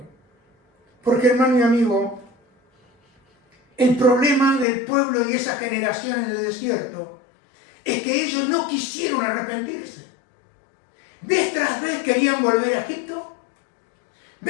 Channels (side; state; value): right; drops out; at 4.7 s